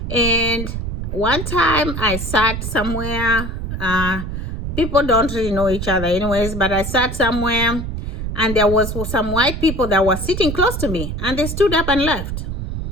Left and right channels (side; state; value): right; noise; rumble, 4 dB below the sound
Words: And one time I sat somewhere, people don't really know each other anyways, but I sat somewhere and there was some white people that were sitting close to me, and they stood up and left.